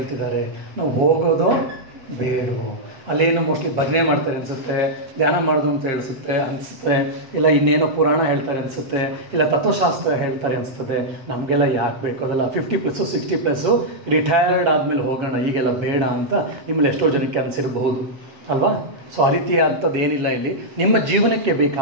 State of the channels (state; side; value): late; left; 7.5 ms